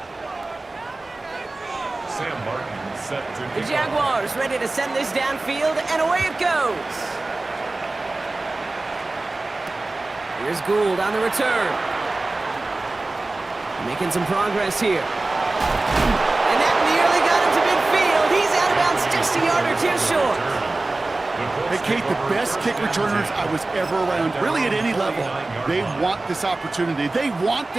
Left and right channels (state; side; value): quieter; left; 3.1 dB